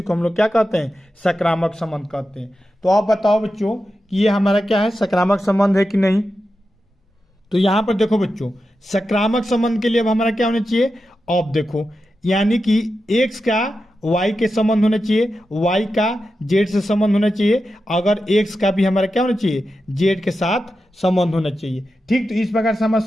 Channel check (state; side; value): normal; both; correlation 0.90